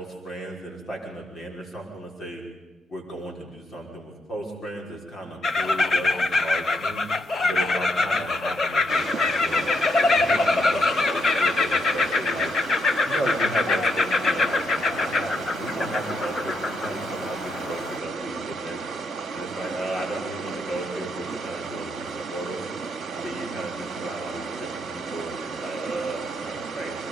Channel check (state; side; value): normal; both; correlation 0.79